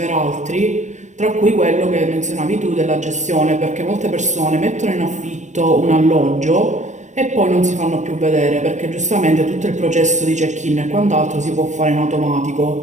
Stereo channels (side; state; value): left; late; 0.34 ms